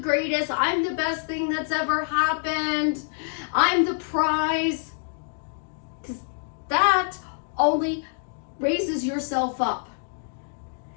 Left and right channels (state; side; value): silent; right; digital silence